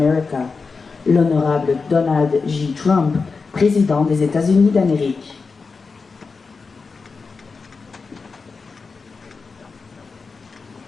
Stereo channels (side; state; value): right; quieter; 4.6 dB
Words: L'Honorable Donald J. Trump, Président des États-Unis d'Amérique.